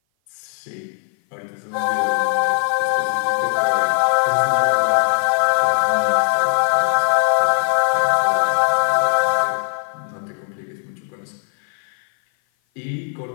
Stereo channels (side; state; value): right; silent; 57 dB below the other